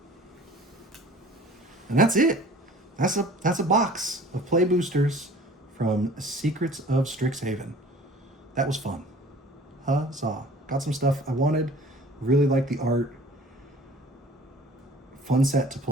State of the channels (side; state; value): both; normal; correlation 0.48